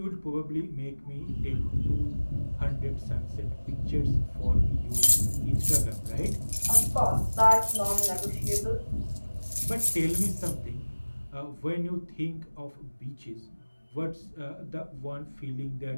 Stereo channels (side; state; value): both; inverted; correlation -1.00